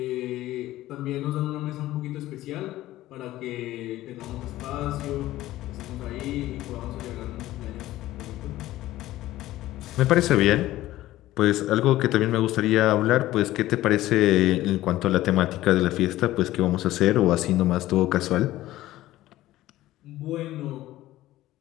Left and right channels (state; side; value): quieter; right; 15.5 dB